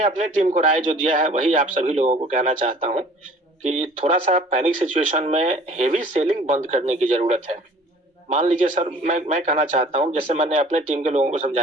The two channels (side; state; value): both; normal; correlation 0.50